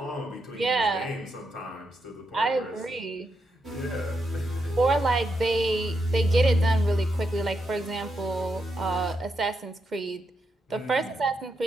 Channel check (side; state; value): both; normal; correlation 0.83